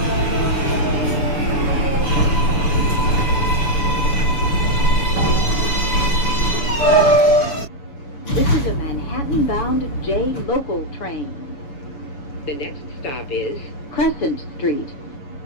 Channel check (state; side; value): late; right; 7.1 ms